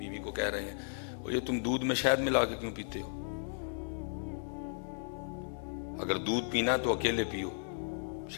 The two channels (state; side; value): silent; right; digital silence